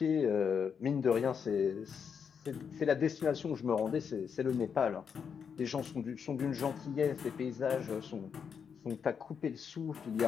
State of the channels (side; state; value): right; quieter; 6.8 dB